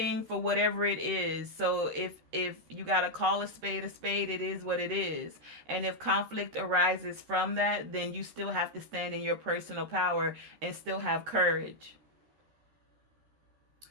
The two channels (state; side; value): late; left; 13 ms